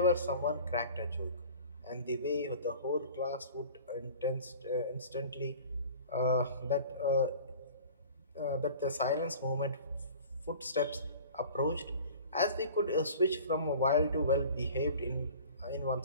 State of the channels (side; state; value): both; inverted; correlation -0.43